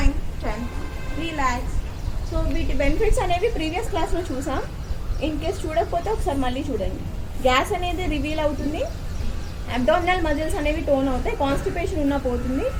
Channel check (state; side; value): identical; both; correlation 1.00